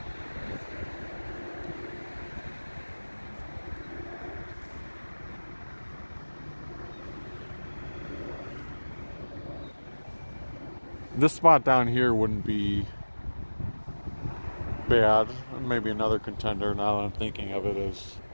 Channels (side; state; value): both; inverted; correlation -1.00